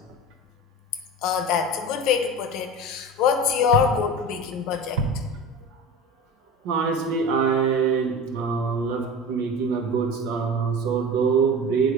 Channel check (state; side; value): normal; both; correlation 0.32